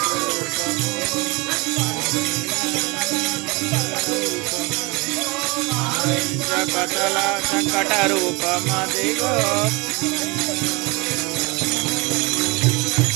పటల సంకట రూపమదిగో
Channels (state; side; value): quieter; left; 26.9 dB